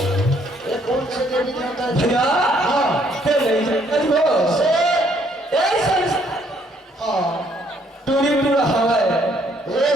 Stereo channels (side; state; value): both; normal; correlation 0.66